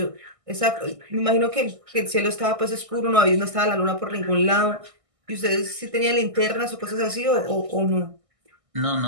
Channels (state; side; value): late; left; 1.6 ms